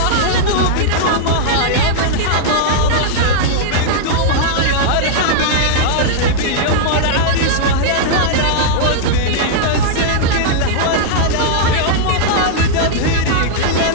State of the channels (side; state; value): both; different; correlation -0.01